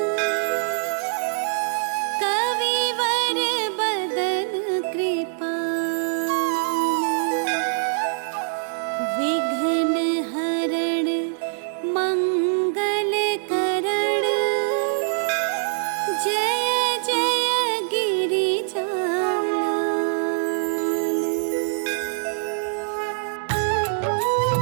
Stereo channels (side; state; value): left; silent; digital silence